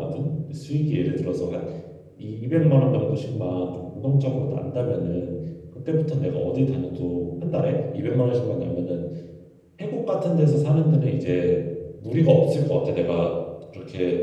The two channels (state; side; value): identical; both; correlation 1.00